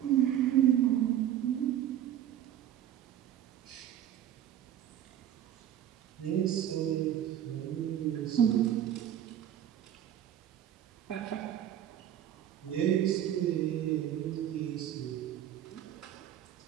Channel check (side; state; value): left; quieter; 11.1 dB